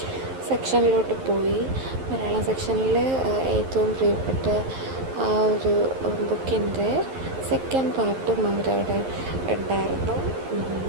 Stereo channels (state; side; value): late; left; 11 ms